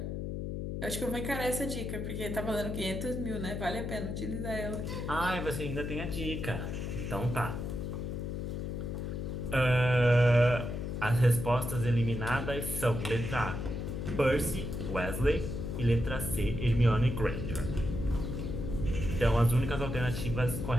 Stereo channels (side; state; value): left; noise; hum, 4 dB below the sound